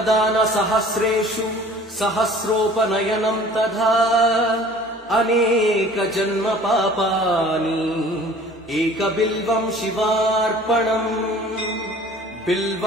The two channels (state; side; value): normal; both; correlation 0.48